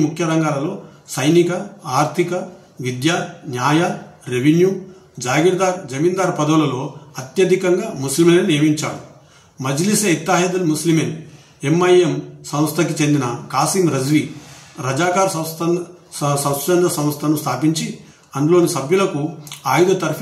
ముఖ్య రంగాలలో సైనిక, ఆర్థిక, విద్య, న్యాయ, రెవెన్యూ, జమీందార్ పదవులలో అత్యధికంగా ముస్లింలను నియమించాడు. మజ్లిస్ ఇత్తాహిదుల్ ముస్లిమీన్ MIM సంస్థకి చెందిన కాసిం రజ్వీ రజాకార్ స్వచ్ఛంద సంస్థను స్థాపించి అందులోని సభ్యులకు ఆయుధ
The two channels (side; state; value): both; identical; correlation 1.00